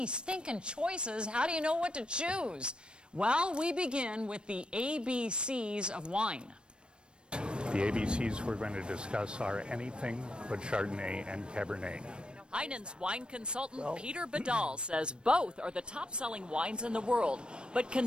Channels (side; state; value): left; late; 0.054 ms